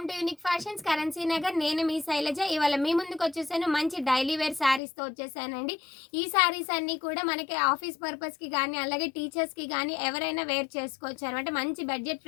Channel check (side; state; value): right; drops out; at 4.8 s